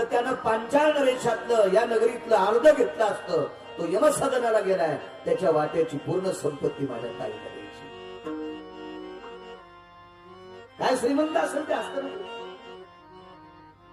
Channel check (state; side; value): identical; both; correlation 1.00